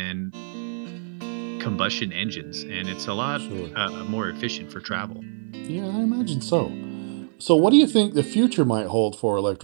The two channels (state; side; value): silent; left; digital silence